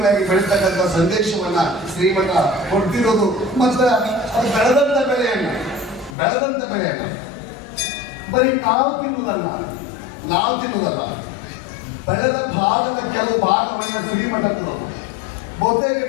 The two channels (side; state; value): right; drops out; at 6.2 s